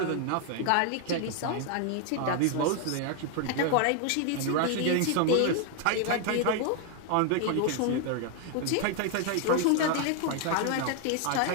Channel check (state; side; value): different; both; correlation 0.00